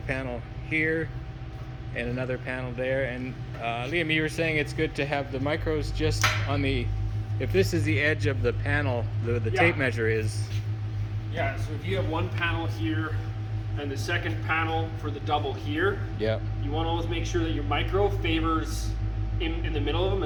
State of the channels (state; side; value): identical; both; correlation 1.00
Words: here and another panel there. And Liam, you were saying it's good to have the micros just on the, if this is the edge of the panel, the Yeah. tape measure is. Yeah, so if you have one panel here and the second panel for the double here, Yeah. you want to always make sure that your micro favors in the middle of them